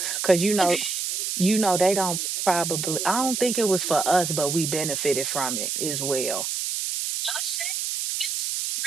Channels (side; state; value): right; noise; hiss, 2 dB below the sound